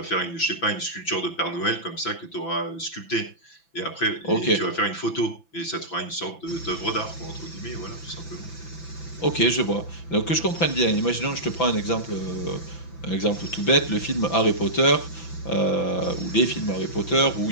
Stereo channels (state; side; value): late; right; 6.0 ms